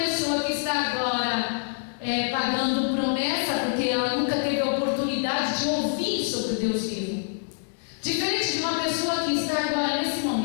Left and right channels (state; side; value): silent; right; digital silence